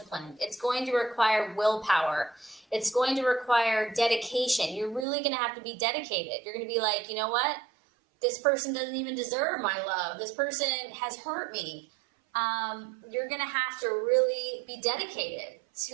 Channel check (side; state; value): left; drops out; at 5.1 s